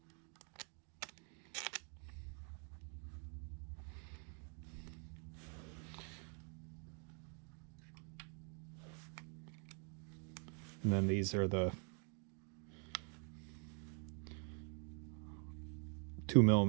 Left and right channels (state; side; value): quieter; left; 39.7 dB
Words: And then these are the